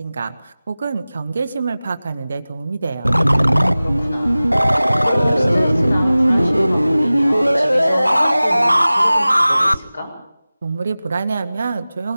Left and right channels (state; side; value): inverted; both; correlation -0.97